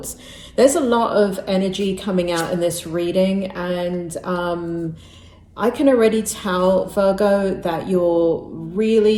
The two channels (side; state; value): both; identical; correlation 1.00